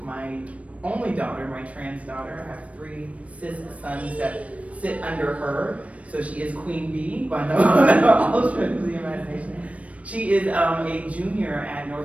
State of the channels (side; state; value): left; late; 0.065 ms